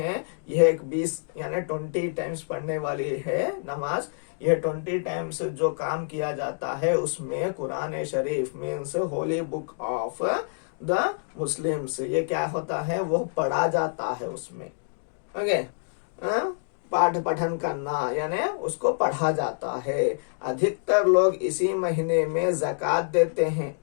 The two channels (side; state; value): right; silent; digital silence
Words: यह एक 20 यानी 20 टाइम्स पढ़ने वाली है नमाज। यह 20 टाइम्स जो काम किया जाता है उसमें Quran Sharif means holy book of the Muslims, ये क्या होता है, वो पढ़ा जाता है उसमें। ओके, पाठ पठन करना यानी उसको पढ़ा जाता है। अधिकतर लोग इसी महीने में ज़कात देते हैं।